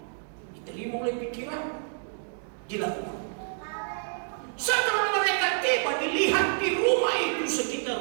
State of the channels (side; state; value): left; silent; digital silence